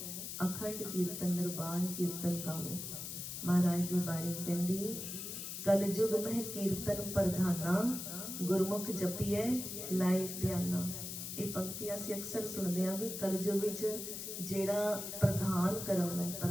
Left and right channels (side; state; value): left; noise; hiss, 6 dB below the sound